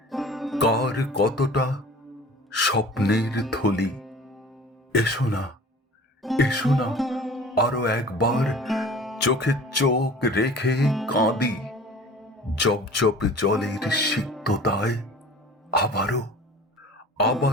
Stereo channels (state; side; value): normal; both; correlation 0.43